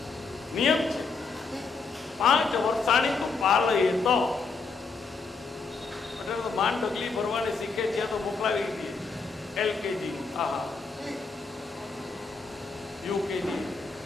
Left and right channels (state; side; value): quieter; right; 4.5 dB